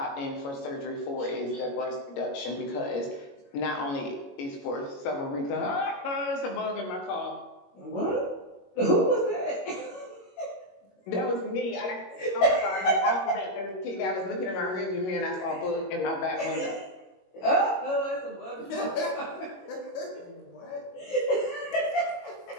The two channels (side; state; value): right; late; 21 ms